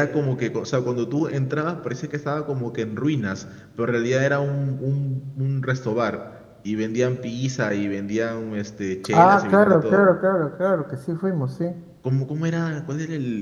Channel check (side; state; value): both; identical; correlation 1.00